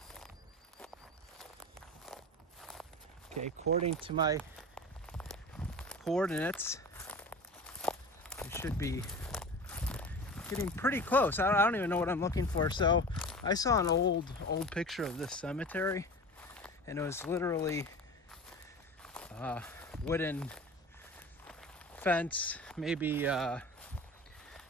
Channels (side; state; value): both; normal; correlation 0.34